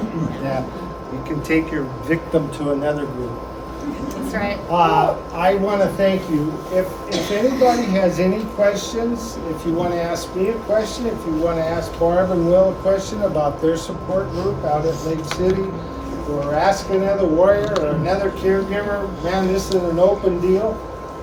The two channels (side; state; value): both; identical; correlation 1.00